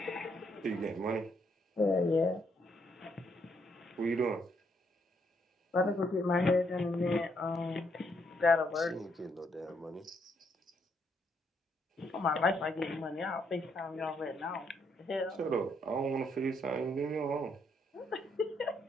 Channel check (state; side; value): normal; both; correlation 0.74